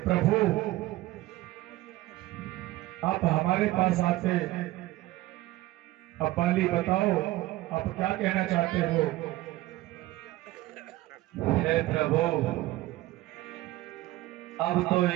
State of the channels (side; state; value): left; quieter; 17.4 dB